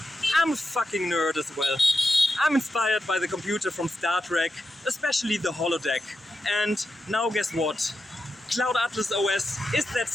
I'm a fucking nerd as well. I'm inspired by the computer from Star Trek, especially the holodeck. And now guess what? Cloud Atlas OS is that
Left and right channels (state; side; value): normal; both; correlation 0.87